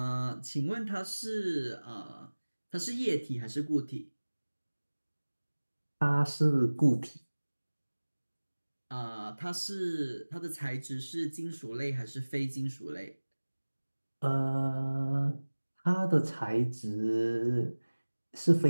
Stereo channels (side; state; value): both; inverted; correlation -1.00